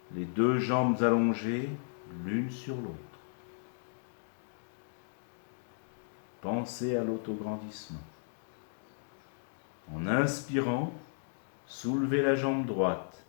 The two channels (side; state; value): right; silent; digital silence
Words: Les deux jambes allongées l'une sur l'autre. Pensez à l'autograndissement. En inspirant, soulevez la jambe droite